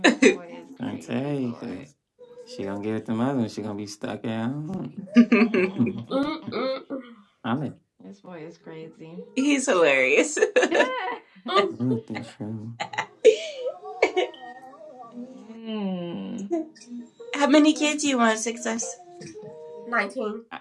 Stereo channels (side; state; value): both; identical; correlation 1.00